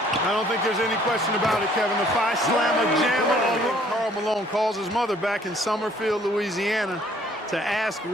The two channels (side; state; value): both; normal; correlation 0.60